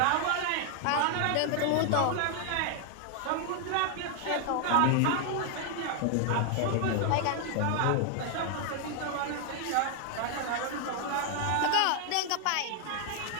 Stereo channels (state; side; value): different; both; correlation 0.00